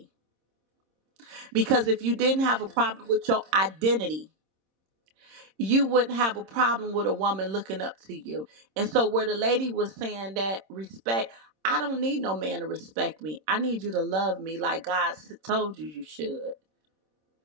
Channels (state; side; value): late; left; 26 ms